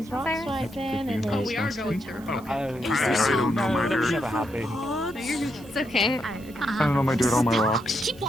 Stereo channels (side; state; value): right; noise; hiss, 24 dB below the sound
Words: those rocks right then. And oh, we are going to. I don't know my dirt. It's okay. I don't know my dirt on my rocks. Keep